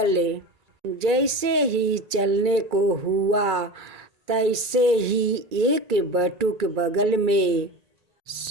जैसे ही चलने को हुआ, तैसे ही एक बटुक बगल में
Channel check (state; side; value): late; left; 2.3 ms